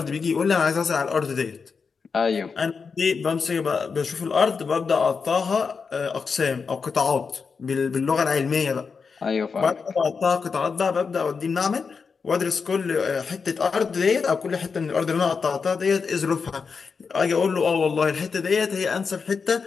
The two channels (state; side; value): quieter; right; 5.4 dB